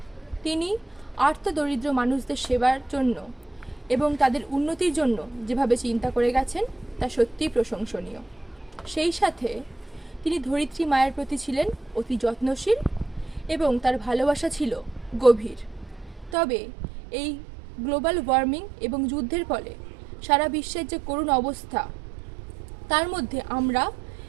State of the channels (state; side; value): drops out; left; at 16.4 s